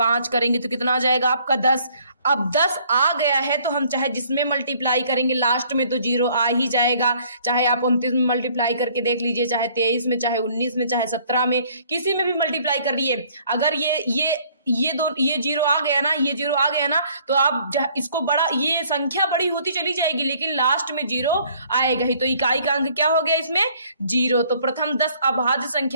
करेंगे तो कितना आ जाएगा आपका 10। अब 10 आ गया है तो हम चाहे जिसमें मल्टीप्लाई करेंगे लास्ट में तो 0 आ ही जाएगा। चाहे आप 29 में मल्टीप्लाई करके देख लीजिए, चाहे 23 में, चाहे 19 में, चाहे 17 में, किसी में भी मल्टीप्लाई कर लिए। अगर ये 0 आ गया ना, ये 0 आ गया ना, तो आप इसको बड़ा, ये संख्या बड़ी होती चली जाएगी लेकिन लास्ट में 0 आएगा ही। तो इकाई का अंक क्या हो गया इसमें 0। तो प्रथम 10 अभाज्य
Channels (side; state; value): both; inverted; correlation -0.60